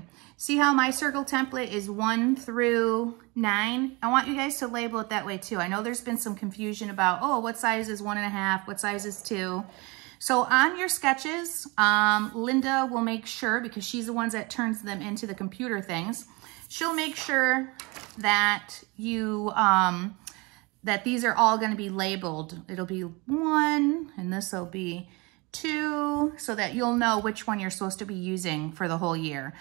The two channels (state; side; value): quieter; left; 26.4 dB